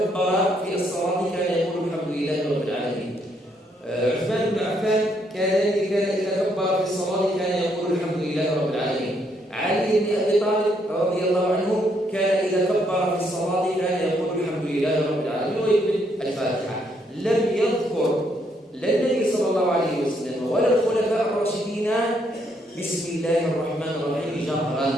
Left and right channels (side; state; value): both; normal; correlation 0.73